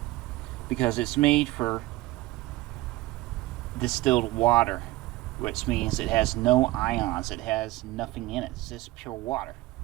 because it's made for distilled water, which means it has no ions, it has nothing in it. It's just pure water,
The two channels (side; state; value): left; quieter; 18.6 dB